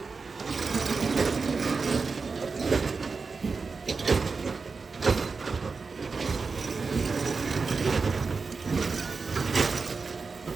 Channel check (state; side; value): quieter; left; 4.6 dB